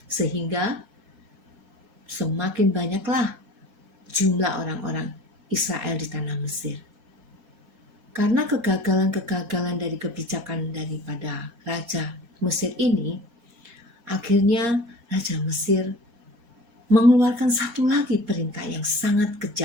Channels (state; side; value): late; left; 3.3 ms